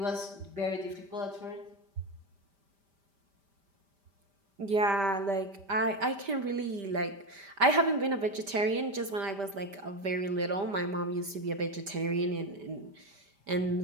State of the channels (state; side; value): late; left; 5.1 ms